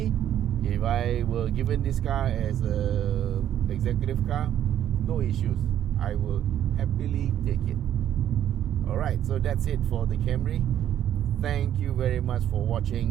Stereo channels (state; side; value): quieter; left; 10.9 dB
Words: if I were given this car as a executive car, no issues. I will happily take it. Alright, so that's it for the Camry. Thank you very much for